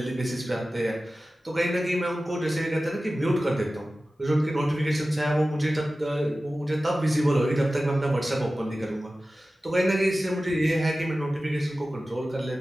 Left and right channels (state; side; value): normal; both; correlation 0.95